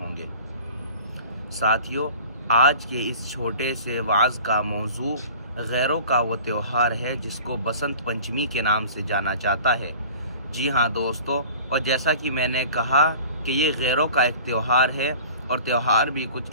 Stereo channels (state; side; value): inverted; both; correlation -0.43